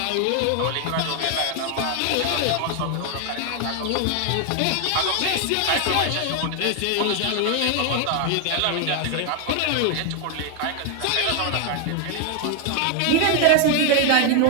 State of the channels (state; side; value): different; both; correlation 0.01